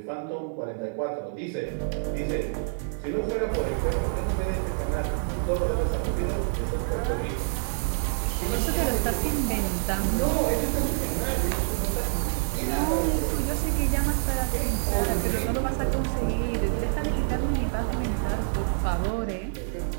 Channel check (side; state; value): left; silent; digital silence